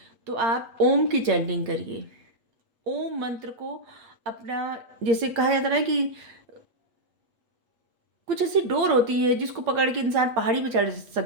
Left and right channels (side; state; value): left; late; 8.2 ms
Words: तो आप ओम की चैंटिंग करिए। ओम मंत्र को अपना, जैसे कहा जाता है कि कुछ ऐसी डोर होती है जिसको पकड़ के इंसान पहाड़ी पे चढ़